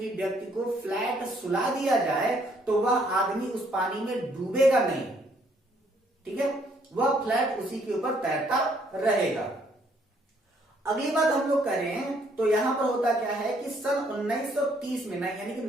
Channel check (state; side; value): normal; both; correlation 0.67